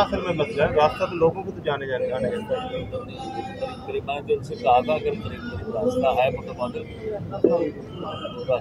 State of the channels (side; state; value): both; identical; correlation 1.00